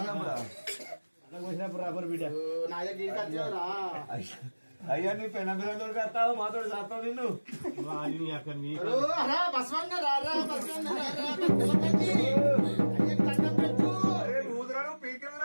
ఓసినప్పుడు రాపరు బిడ్డ అయ్యా నీ పెన పిల్లలు కడతావు మాతో చేస్తావు నిన్ను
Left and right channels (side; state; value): both; inverted; correlation -1.00